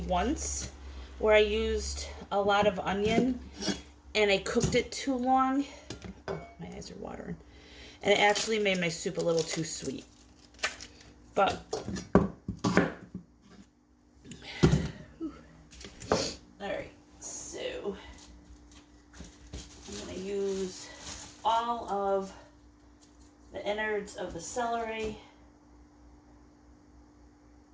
where I used a lot of onion and I cooked it too long. Oh, my eyes are watering. And it actually made my soup a little too sweet. But, alright, so I'm going to use all of the innards of the celery.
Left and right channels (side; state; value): both; identical; correlation 1.00